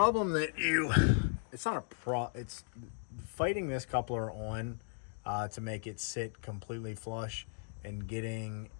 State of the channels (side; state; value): right; silent; 54 dB below the other